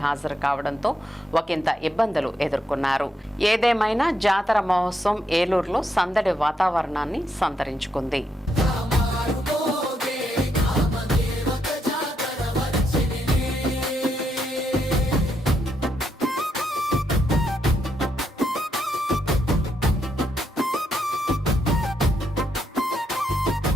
హాజరు కావడంతో ఒకంత ఇబ్బందులు ఎదుర్కొన్నారు. ఏదేమైనా జాతర మహోత్సవం ఏలూరులో సందడి వాతావరణాన్ని సంతరించుకుంది.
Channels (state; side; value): normal; both; correlation 0.79